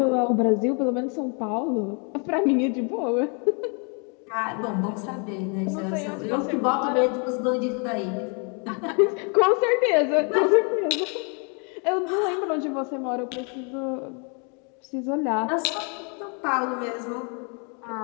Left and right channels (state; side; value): quieter; right; 37.0 dB